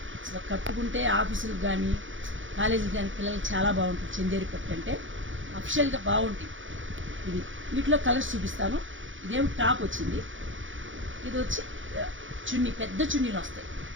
అసలు కట్టుకుంటే ఆఫీసులకు కానీ కాలేజీకి కానీ పిల్లలకి చాలా బాగుంటుంది. చందేరి పట్టు అంటే అఫిషియల్గా బాగుంటుంది. ఇది వీటిలో కలర్స్ చూపిస్తాను. ఇదేం టాప్ వచ్చింది, ఇది వచ్చి చున్నీ, పెద్ద చున్నీలు వస్తాయి.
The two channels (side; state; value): left; late; 0.56 ms